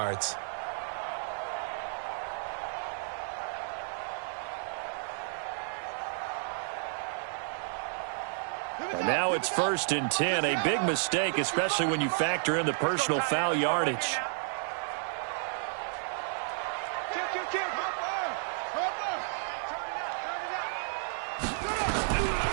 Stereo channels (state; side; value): silent; left; 56 dB below the other